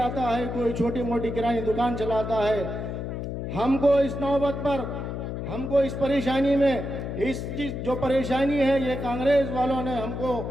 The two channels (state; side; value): noise; left; hum, 5 dB below the sound